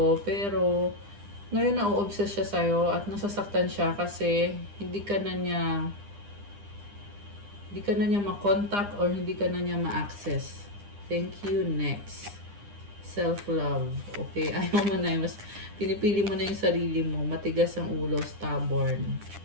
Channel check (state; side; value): late; left; 9.9 ms